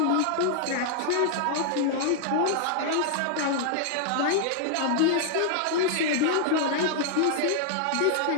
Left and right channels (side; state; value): both; different; correlation -0.01